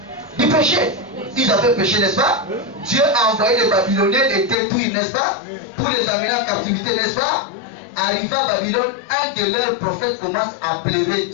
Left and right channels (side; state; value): right; drops out; at 4.5 s